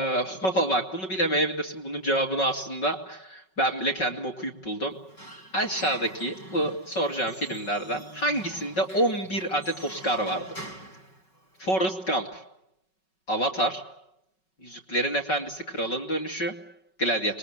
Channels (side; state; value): right; late; 5.4 ms